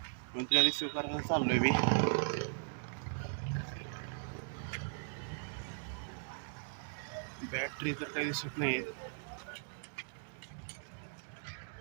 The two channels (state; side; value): silent; left; digital silence